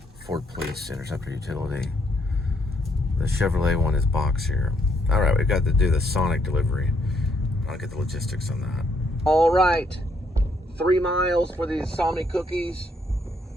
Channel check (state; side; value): normal; both; correlation 0.72